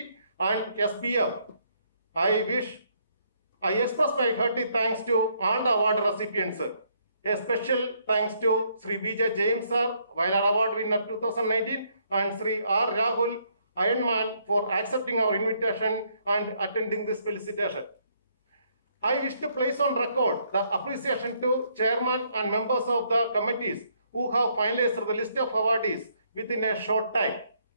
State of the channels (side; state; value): both; inverted; correlation -0.71